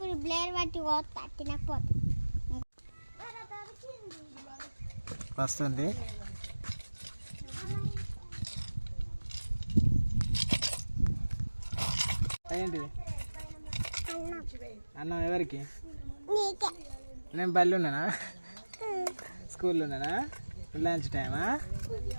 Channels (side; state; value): both; inverted; correlation -1.00